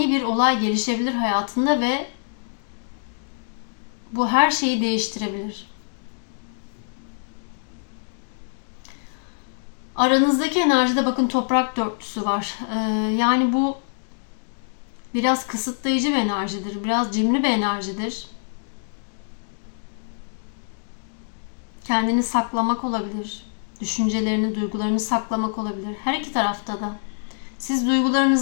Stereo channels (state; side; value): silent; right; digital silence